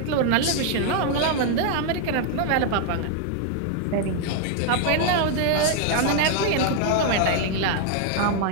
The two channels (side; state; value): both; different; correlation 0.00